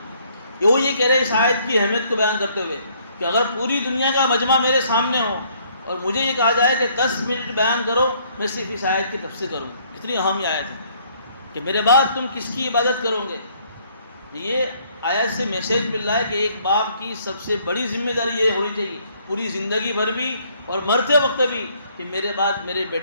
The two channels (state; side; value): inverted; both; correlation -0.64